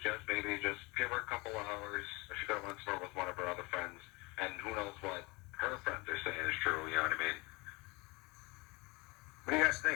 maybe just give her a couple of hours. She could have went somewhere with one of her other friends, and who knows what her friends are saying is true. You know what I mean? What do you guys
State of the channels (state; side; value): quieter; right; 25.5 dB